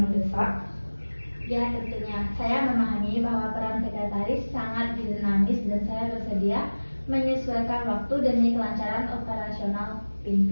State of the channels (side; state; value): both; inverted; correlation -1.00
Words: mendesak? Ya, tentunya. Saya memahami bahwa peran sekretaris sangat dinamis dan saya bersedia menyesuaikan waktu demi kelancaran operasional